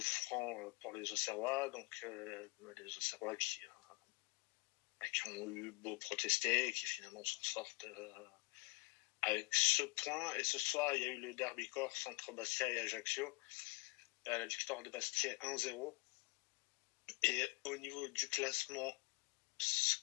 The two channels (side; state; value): right; quieter; 25.4 dB